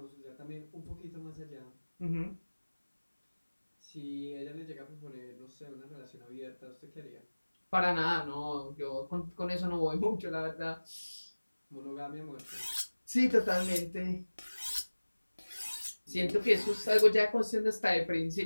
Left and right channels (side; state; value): both; inverted; correlation -1.00